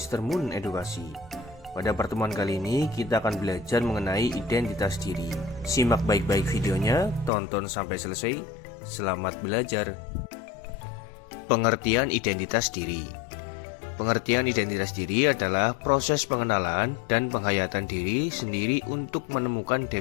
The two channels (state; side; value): drops out; right; at 7.3 s